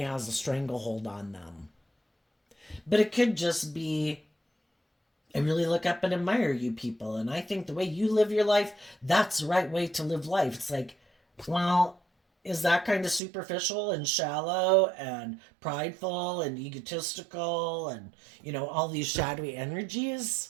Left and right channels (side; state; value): left; drops out; at 13.2 s